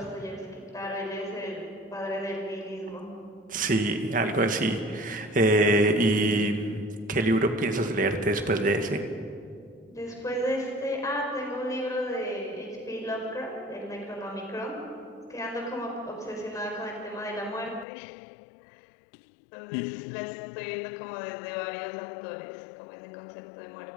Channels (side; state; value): right; drops out; at 17.9 s